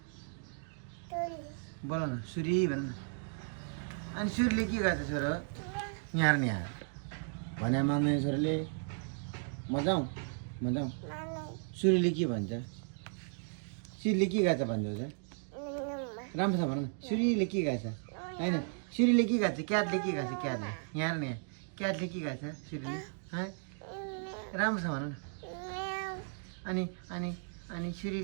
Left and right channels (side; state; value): left; silent; 54 dB below the other